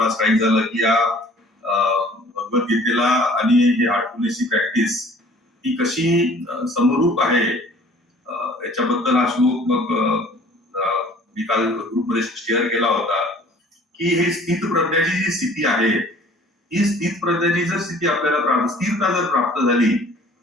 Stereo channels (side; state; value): both; normal; correlation 0.51